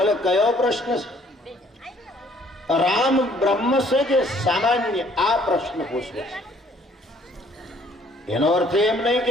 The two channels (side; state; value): both; normal; correlation 0.60